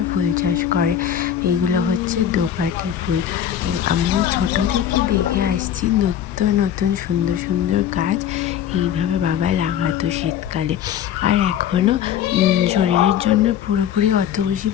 ফুল চাষ করে। এগুলো হচ্ছে দোপাটি ফুল। আমি ছোট থেকে দেখে আসছি নতুন নতুন সুন্দর সুন্দর গাছ এইভাবে বাবা লাগাতো শীতকালে। আর এখনও শরীরের জন্য পুরোপুরি অত বেশি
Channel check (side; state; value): right; quieter; 9.8 dB